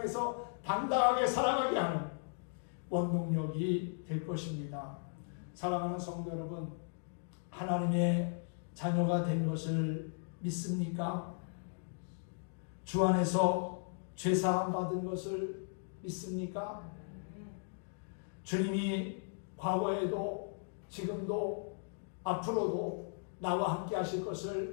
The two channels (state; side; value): silent; right; digital silence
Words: 당당하게 살아가게 하는 원동력이 될 것입니다. 사랑하는 성도 여러분, 하나님의 자녀가 된 것을 믿습니까? 주 안에서 죄사함 받은 것을 믿습니까? 주님이 과거에도 지금도 앞으로도 나와 함께 하실